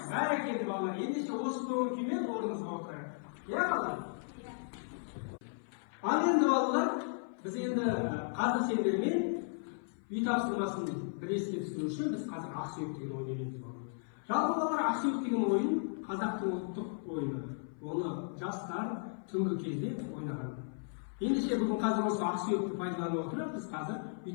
Barakalla bolalar. Endişe o'sib kimen o'rnimizga o'tirib. Ya bolalar. Ana endi bolalar biz endi qadr sendirmen uy topshirmasini bir esga tushirish uchun biz hozir aqsuyuq degan o'ynaymiz. Жалпы bolalar aqsuyuq degan o'yin Qozoqning ultiq o'yini. Оны жастар түнгі кезде ойнаған. Ендеше бүгін қазір осы ақсүйекті пайдаланып отырып, біз қазір үй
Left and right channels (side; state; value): right; silent; 54 dB below the other